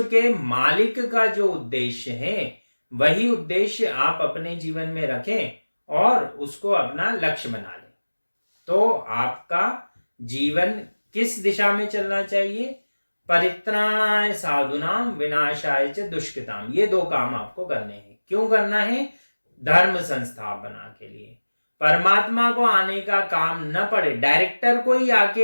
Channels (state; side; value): inverted; both; correlation -1.00